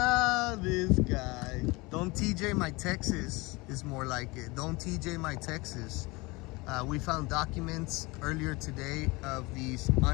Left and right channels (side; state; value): right; quieter; 24.2 dB